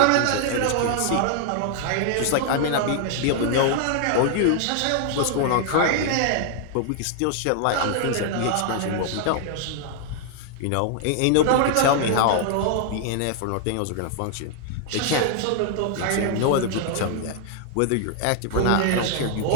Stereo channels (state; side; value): different; both; correlation 0.00